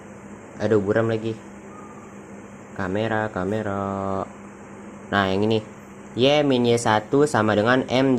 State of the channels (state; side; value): identical; both; correlation 1.00